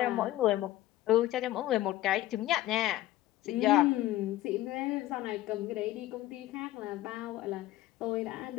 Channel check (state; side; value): quieter; right; 15.2 dB